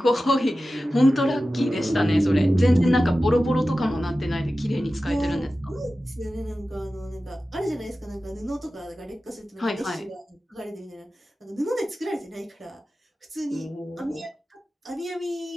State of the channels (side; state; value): both; normal; correlation 0.94